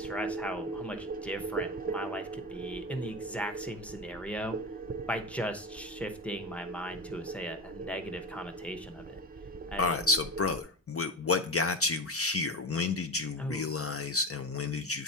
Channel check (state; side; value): normal; both; correlation 0.23